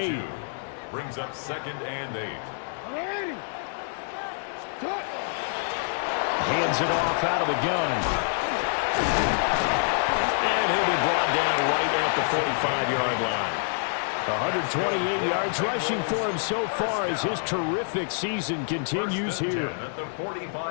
Brings up 2nd and 8. Hands it off out of the gun. And he'll be brought down right at the 45-yard line. 128 yards rushing for him so far as his terrific season continues here. At the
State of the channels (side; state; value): right; silent; 60 dB below the other